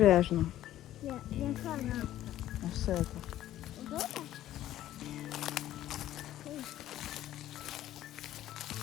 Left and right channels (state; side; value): quieter; right; 13.2 dB